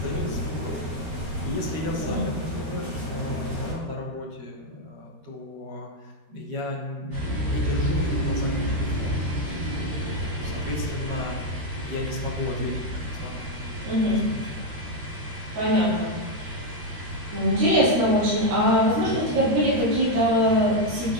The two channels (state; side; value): late; left; 13 ms